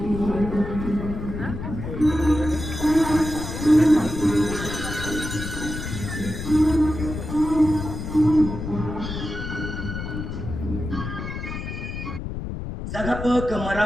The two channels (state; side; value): noise; left; rumble, 6 dB below the sound